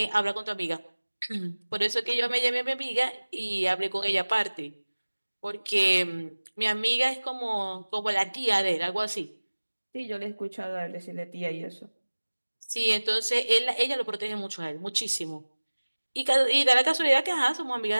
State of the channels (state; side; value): inverted; both; correlation -1.00